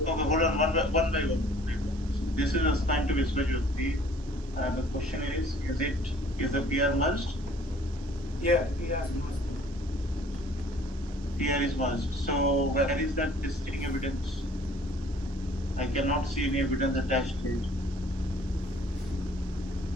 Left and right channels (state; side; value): normal; both; correlation 0.55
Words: Okay, hold on, one by one. This is assigned to Viswajyoti. The question is the PR merged? Yeah, PR is must. PR is merged. So where is that testing evidence? I cannot see any evidence attached here.